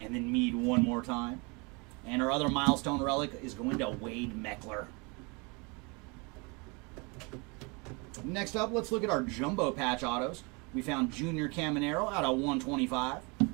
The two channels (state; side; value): quieter; left; 29.8 dB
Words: And then Mead one more time. And our other milestone relic is going to Wade Meckler. Next up, let's look at our jumbo patch autos. We found Junior Caminero out of 125.